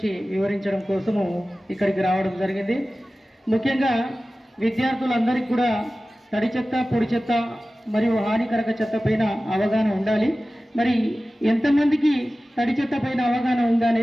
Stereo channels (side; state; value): both; normal; correlation 0.96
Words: వివరించడం కోసము ఇక్కడికి రావడం జరిగింది. ముఖ్యంగా విద్యార్థులందరికీ కూడా తడి చెత్త పొడి చెత్త మరియు హానికరక చెత్త పైన అవగాహన ఉండాలి. మరి ఎంతమందికి తడి చెత్త పైన అవగాహన ఉందా